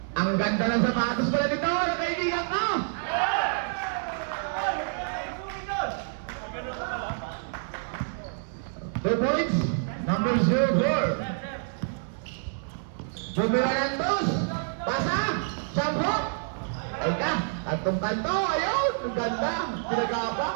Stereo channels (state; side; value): silent; left; 58 dB below the other